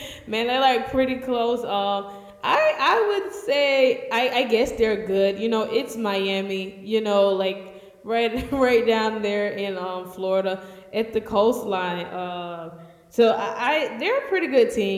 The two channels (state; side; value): identical; both; correlation 1.00